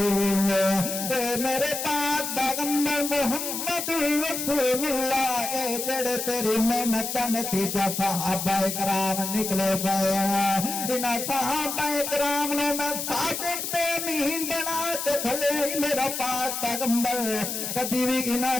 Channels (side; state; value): left; noise; hiss, 4 dB below the sound